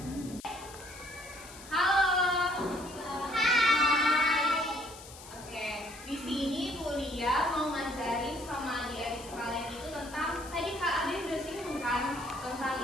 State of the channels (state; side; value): noise; left; hiss, 17 dB below the sound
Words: Halo. Hai. Oke, di sini Bu Lia mau ngajarin sama adik-adik sekalian itu tentang tadi Kak Ade udah singgung kan tentang